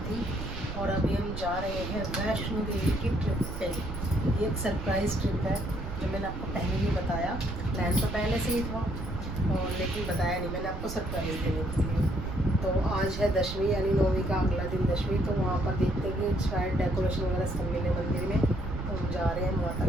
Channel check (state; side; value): noise; right; rumble, 6 dB below the sound